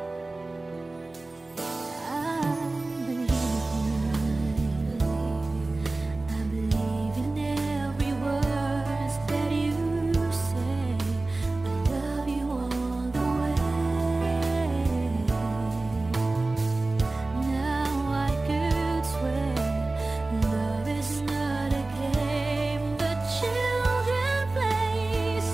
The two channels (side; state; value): left; quieter; 3.1 dB